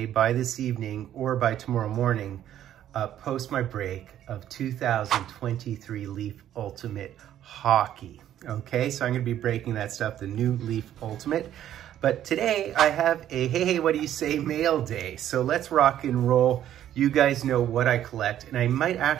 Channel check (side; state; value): left; quieter; 11.4 dB